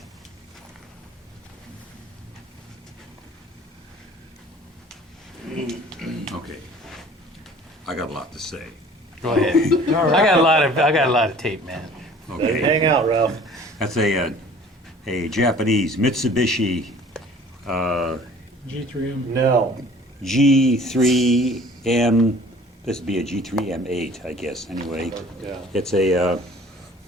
Okay. I got a lot to say. Go ahead. I got a lot of tape, man. Okay. Hang out, Ralph. That's a Japanese Mitsubishi G3M. Nell. G3M. This would be a G3M8, I guess, anyway. Yeah. It's a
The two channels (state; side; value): normal; both; correlation 0.50